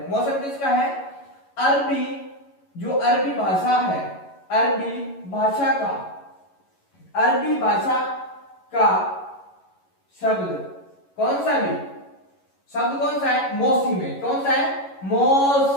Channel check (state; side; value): late; right; 11 ms